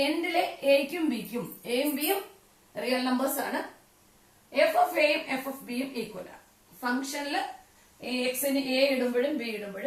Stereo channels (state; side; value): identical; both; correlation 1.00